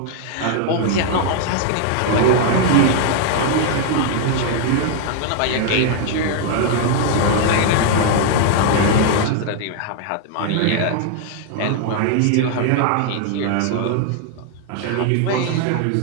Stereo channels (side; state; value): both; different; correlation 0.00